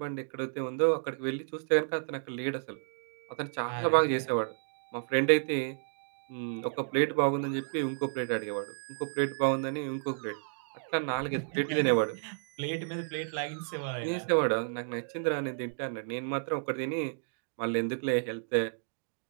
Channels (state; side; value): silent; left; digital silence